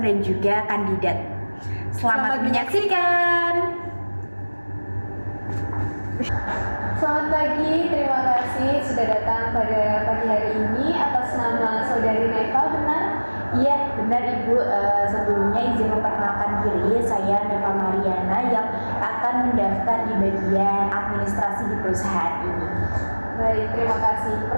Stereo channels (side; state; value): both; inverted; correlation -1.00